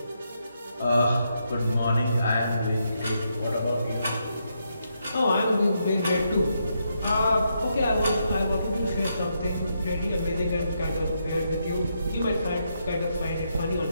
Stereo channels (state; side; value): inverted; both; correlation -0.80